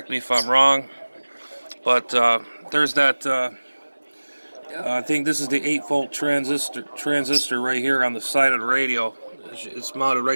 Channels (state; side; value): inverted; both; correlation -1.00